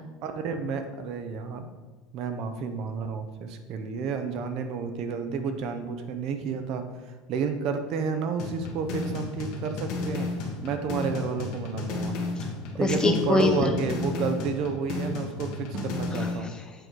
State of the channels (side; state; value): both; normal; correlation 0.46